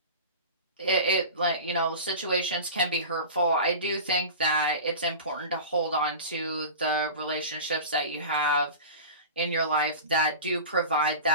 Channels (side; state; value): both; inverted; correlation -0.32